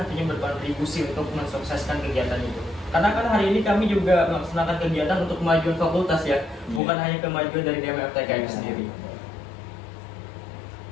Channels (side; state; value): right; drops out; at 6.8 s